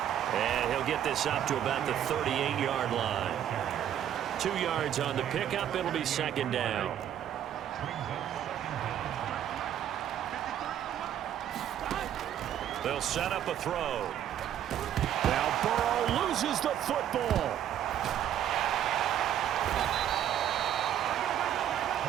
And he'll get this up to about the 38-yard line. 2 yards on the pickup. It'll be 2nd down. They'll set up a throw. Now Burrow loses the football.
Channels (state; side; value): quieter; left; 10.5 dB